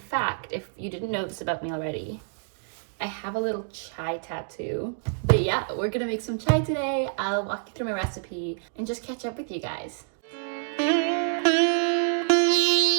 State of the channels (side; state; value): left; silent; 60 dB below the other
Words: if you didn't know this about me already, I have a little chai tattoo. But yeah, we're gonna make some chai today. I'll walk you through my recipe and just catch up with you guys.